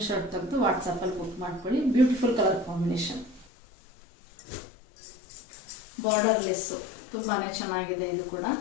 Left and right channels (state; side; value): drops out; right; at 3.5 s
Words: ತೆಗೆದು ವಾಟ್ಸಪ್ಪಲ್ಲಿ ಬುಕ್ ಮಾಡ್ಕೊಳ್ಳಿ. Beautiful colour combination. Border less ತುಂಬಾನೇ ಚೆನ್ನಾಗಿದೆ. ಇದು ಕೂಡ